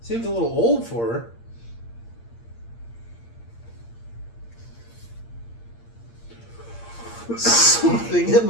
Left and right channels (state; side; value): late; right; 8.7 ms